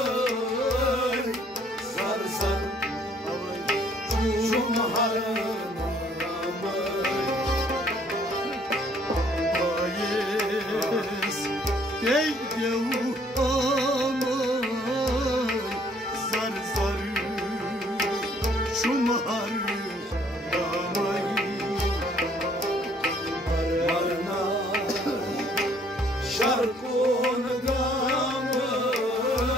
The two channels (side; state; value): both; normal; correlation 0.62